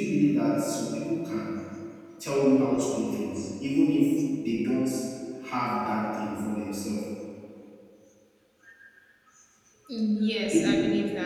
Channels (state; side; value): identical; both; correlation 1.00